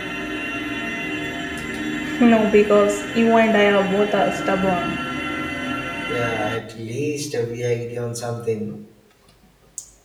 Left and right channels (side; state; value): both; identical; correlation 1.00